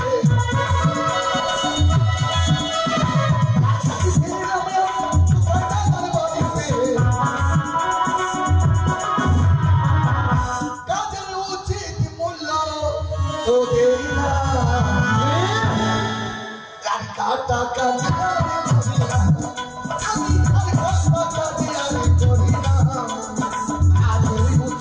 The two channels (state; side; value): identical; both; correlation 1.00